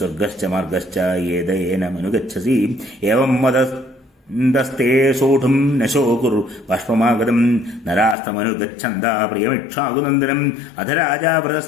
മാർഗശ്ച യേദയേനമനുഗച്ഛസി ഏവം വദസ്തേ സോഢും നശോ കുരു ബാഷ്പമാഗതം നരാസ്തമനുഗച്ഛന്താ പ്രിയമിക്ഷാകുനന്ദനം അധ രാജാ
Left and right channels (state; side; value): drops out; right; at 8.2 s